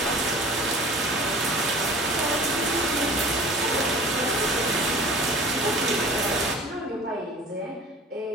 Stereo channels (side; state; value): both; normal; correlation 0.42